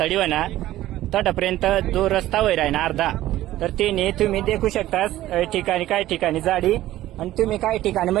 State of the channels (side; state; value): left; quieter; 14.8 dB